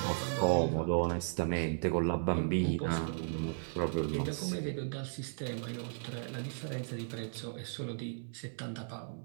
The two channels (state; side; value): silent; left; 54 dB below the other